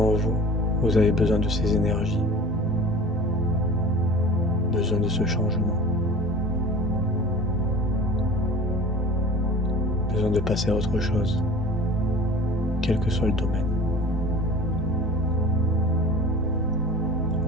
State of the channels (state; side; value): normal; both; correlation 0.40